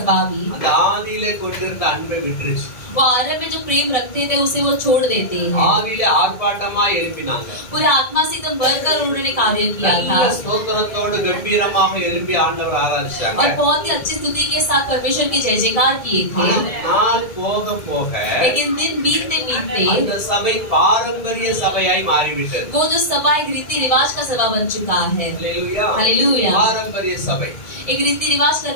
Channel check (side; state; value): right; late; 1.7 ms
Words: भी அந்த ஆதியிலே கொண்டிருந்த அன்பை விட்டுருச்சு. वो आरंभ में जो प्रेम रखते थे उसे वो छोड़ देते हैं। ஆதியிலே ஆர்ப்பாட்டமா எழுப்பினாங்க. पूरे आत्मा से एकदम भरकर उन्होंने कार्य किया था நல்ல ஸ்தோத்திரத்தோடு கம்பீரமாக எழுப்பி ஆண்டவர் ஆராதிச்சாங்க. और बहुत ही अच्छी स्तुति के साथ परमेश्वर की जय जयकार किए थे। நாள் போக போக लेकिन दिन बीतते बीतते அந்த சபை பாரம்பரிய சபையாய் மாறிவிட்டது. वो जो सभा एक रीति रिवाज का सभा बन चुका है। அல்லேலூயா. हालेलुया। பாரம்பரிய சபை, एक रीति रिवाज